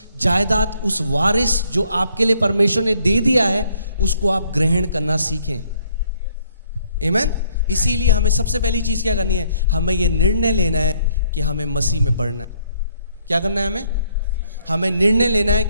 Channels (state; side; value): inverted; both; correlation -0.67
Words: जायदाद, उस वारिस जो आपके लिए परमेश्वर ने दे दिया है, उसको आप ग्रहण करना सीखें। आमीन। इसीलिए हमें सबसे पहली चीज क्या करनी है? हमें यह निर्णय लेना है कि हमें मसीह में बढ़ना है। क्या करना है? हमें निर्णय लेना है